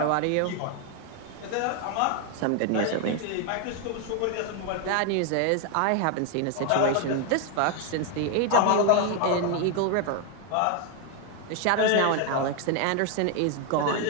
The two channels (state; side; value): different; both; correlation 0.01